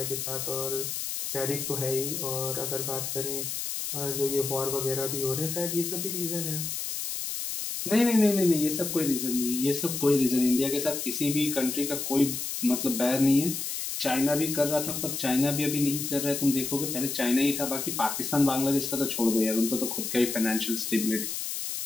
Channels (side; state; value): left; noise; hiss, 4 dB below the sound